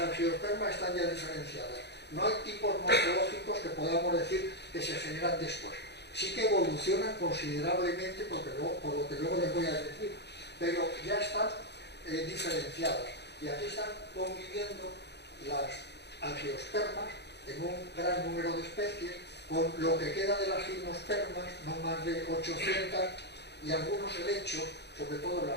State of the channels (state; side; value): late; right; 0.49 ms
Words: están ya diferenciadas. No hay tipos morfológicos que podamos decir que se generan después. Sí que evolucionan considerablemente, por lo que luego les voy a decir, pero ya están diferenciadas. Y aquí están conviviendo las angiospermas en un gran número de especies, con lo que queda de las gimnospermas, no más de 800, y algunos helechos, sobre todo en